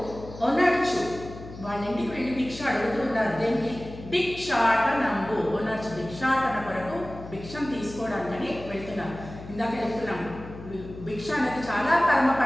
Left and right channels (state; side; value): noise; left; hum, 14 dB below the sound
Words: ఒనర్చు, వాళ్ళ ఇంటికి వెళ్ళి భిక్ష అడుగుతున్నారు. దేనికి? భిక్షాటనంబు. ఒనర్చు భిక్షాటన కొరకు, భిక్షం తీసుకోవడానికని వెళ్తున్నారు. ఇందాక చెప్తున్నాం, భిక్ష అనేది చాలా పరమ